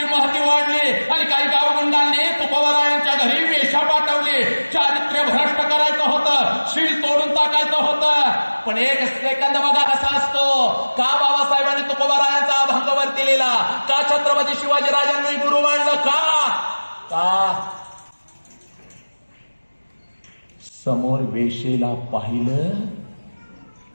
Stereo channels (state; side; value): inverted; both; correlation -1.00